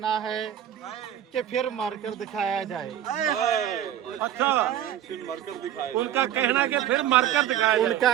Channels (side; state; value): left; quieter; 10.9 dB